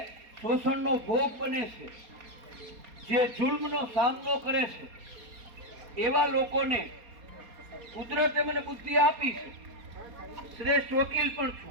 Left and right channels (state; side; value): late; left; 4.3 ms